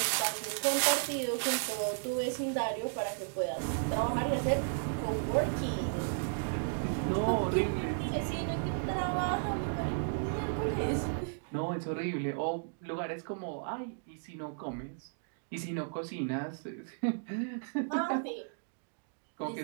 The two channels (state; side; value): silent; left; digital silence